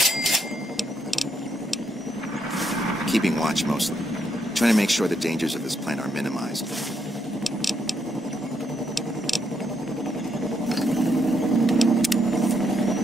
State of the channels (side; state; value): both; normal; correlation 0.76